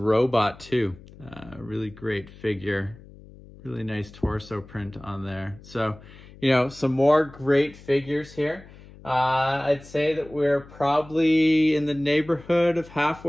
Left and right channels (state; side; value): noise; left; hum, 20 dB below the sound